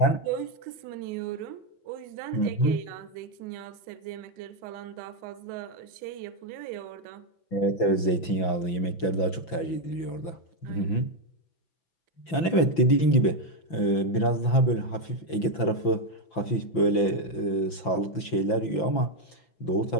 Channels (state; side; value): late; right; 5.9 ms